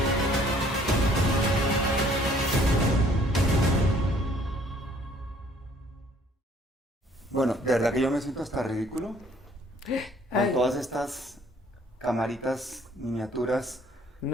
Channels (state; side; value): normal; both; correlation 0.59